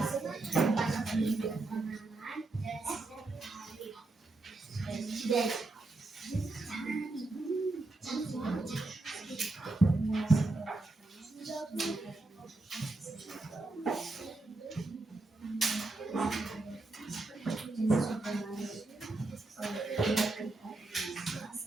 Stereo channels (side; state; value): left; quieter; 3.1 dB